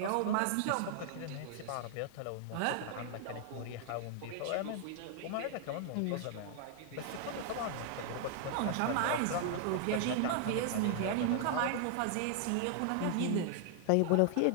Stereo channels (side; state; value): both; different; correlation 0.00